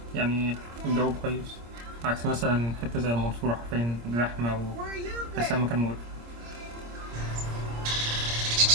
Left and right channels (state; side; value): late; left; 26 ms